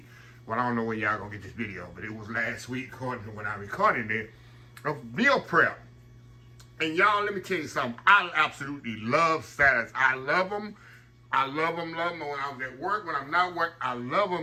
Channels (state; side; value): identical; both; correlation 1.00